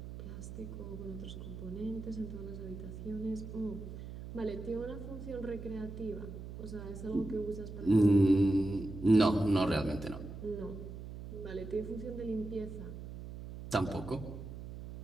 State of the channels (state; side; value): noise; right; hum, 10 dB below the sound